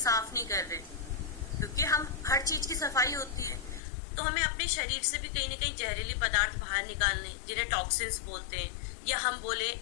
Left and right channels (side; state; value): right; drops out; at 3.8 s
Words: नहीं कर रहे, क्योंकि हम हर चीज की सफाई होती है तो हमें अपने शरीर से भी कहीं ना कहीं जहरीले पदार्थ बाहर निकालने, जिन्हें टॉक्सिन्स बोलते हैं, या हम बोले